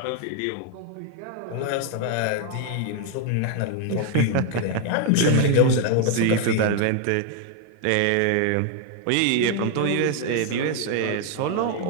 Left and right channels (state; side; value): different; both; correlation 0.00